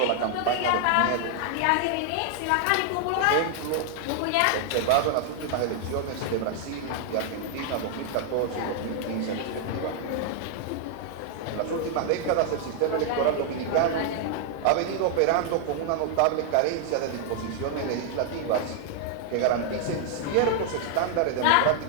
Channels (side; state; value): both; different; correlation 0.00